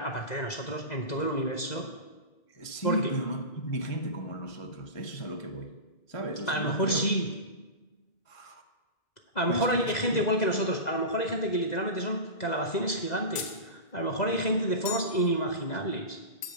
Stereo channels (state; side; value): late; right; 2.0 ms